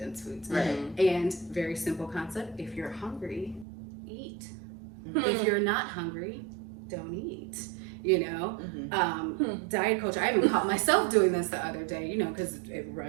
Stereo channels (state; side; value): drops out; left; at 3.7 s